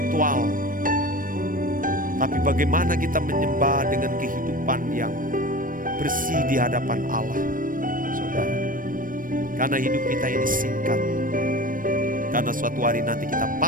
Tapi bagaimana kita menyembah dengan kehidupan yang bersih di hadapan Allah, saudara. Karena hidup kita ini singkat. Karena suatu hari nanti kita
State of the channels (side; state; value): left; late; 0.40 ms